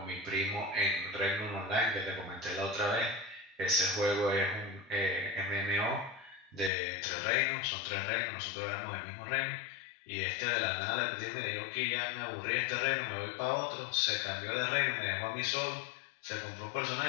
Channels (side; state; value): right; drops out; at 6.7 s